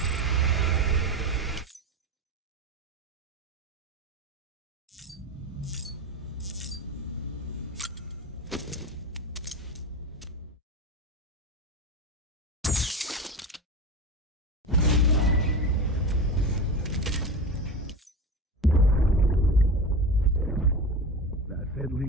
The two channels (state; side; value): normal; both; correlation 0.26